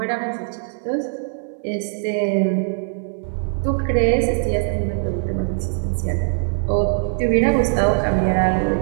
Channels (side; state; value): left; silent; digital silence